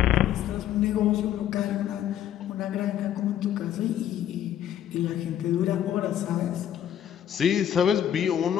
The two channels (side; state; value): right; quieter; 10.7 dB